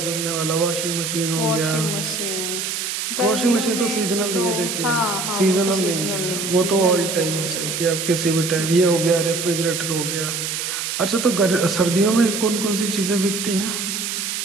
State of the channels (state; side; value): noise; right; hiss, 3 dB below the sound